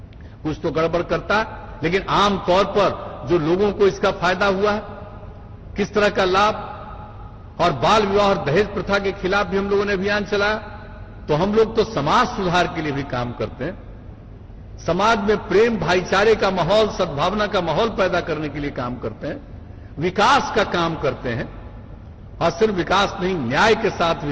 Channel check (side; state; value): both; identical; correlation 1.00